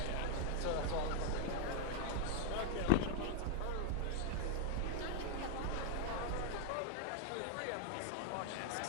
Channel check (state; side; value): different; both; correlation 0.01